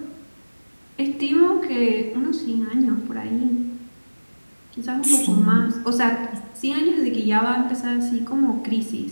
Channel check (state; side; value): inverted; both; correlation -1.00